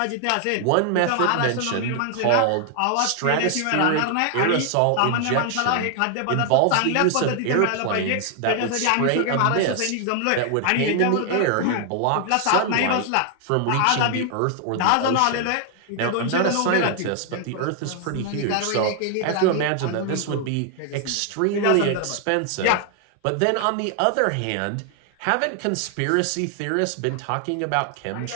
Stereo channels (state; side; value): different; both; correlation 0.00